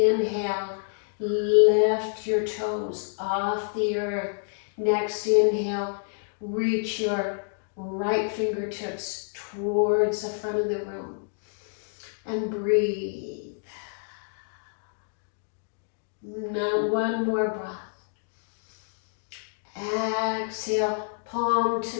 lift your toes off the earth. Next inhale, reach your right fingertips towards the front of the room. And breathe. Now 1 more breath. Exhale, palm to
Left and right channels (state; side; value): silent; right; 59 dB below the other